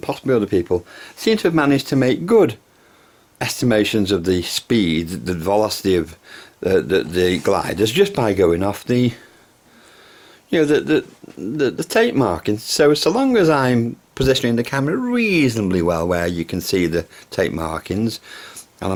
possibly other people seem to have managed to make good estimations of the speed, the velocity of the gliders just by going off the, you know, the tape markings. So long as I'm positioning the camera reasonably well where you can see the tape markings, and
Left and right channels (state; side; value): identical; both; correlation 1.00